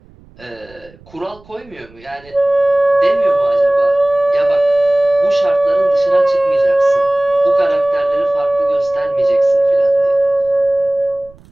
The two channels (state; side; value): noise; right; rumble, 26 dB below the sound